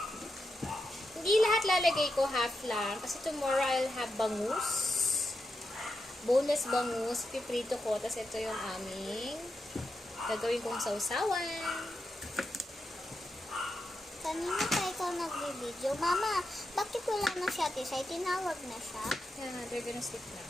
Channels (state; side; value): normal; both; correlation 0.87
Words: Hindi lahat lalagay ko, half lang. Kasi tomorrow I'll have bangus. Boneless bangus. Piprito ko. Tapos ito yung aming gagawin kong sausawan. Kanina pa ikaw nag-video. Mama, bakit wala na si Ate Sai? Tinawag na siya. Yeah, they're gonna sleep now.